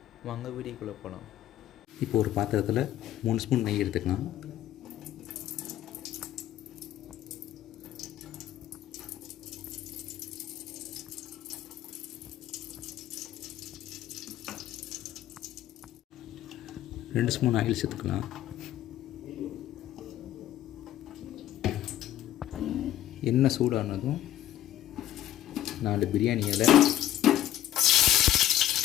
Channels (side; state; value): right; quieter; 12.5 dB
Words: வாங்க வீடியோக்குள்ளே போகலாம். இப்போ ஒரு பாத்திரத்தில் 3 ஸ்பூன் நெய் எடுத்துக்கலாம். ரெண்டு ஸ்பூன் ஆயில் சேர்த்துக்கலாம். எண்ணெய் சூடானதும் 4 பிரியாணி இலை,